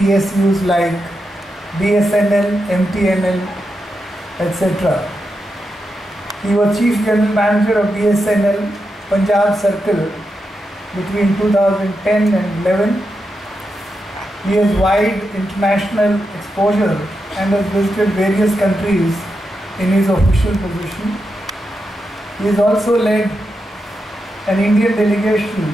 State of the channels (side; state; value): both; normal; correlation 0.87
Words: like BSNL, MTNL, etc. He was Chief General Manager of BSNL Punjab Circle between 2010 and 11. He has wide international exposure and has visited various countries in his official position. He has also led an Indian